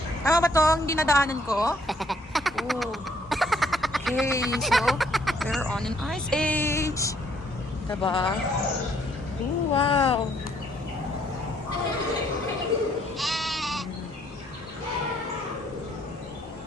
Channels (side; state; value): both; normal; correlation 0.67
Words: Tama ba to ang dinadaanan ko? Ooh. Okay, so we're on an ice age. Diba? Ooh, wow.